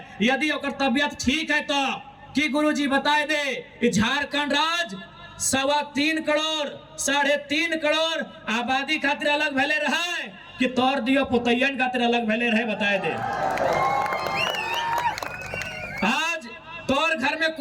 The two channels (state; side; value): identical; both; correlation 1.00